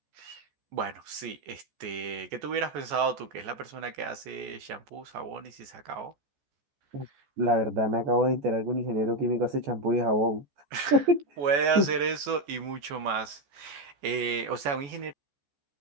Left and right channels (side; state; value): left; late; 14 ms